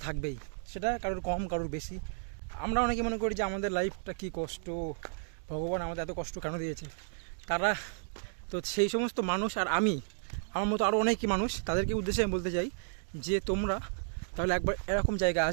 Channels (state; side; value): silent; left; digital silence